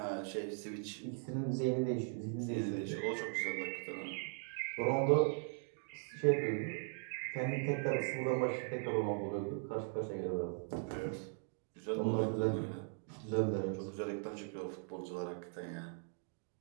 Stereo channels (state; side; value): silent; left; 52 dB below the other